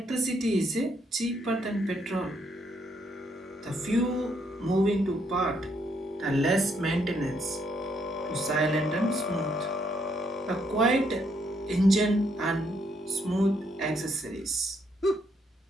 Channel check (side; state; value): both; normal; correlation 0.73